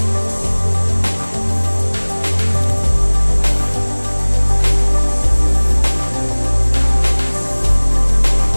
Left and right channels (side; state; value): both; inverted; correlation -1.00